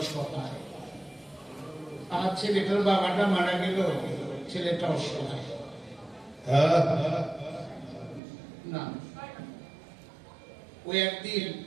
আর ছেলেটার বাবাটা মারা গেল, ছেলেটা অসহায়। না, ওই একদিন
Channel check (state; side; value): drops out; left; at 8.2 s